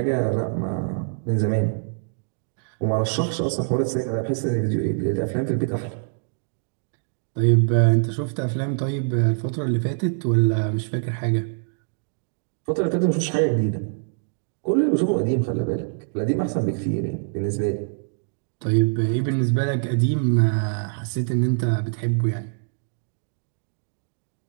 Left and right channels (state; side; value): silent; left; digital silence